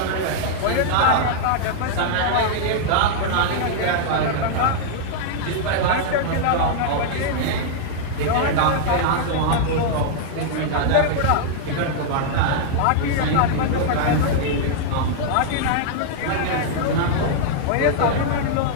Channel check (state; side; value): different; both; correlation -0.01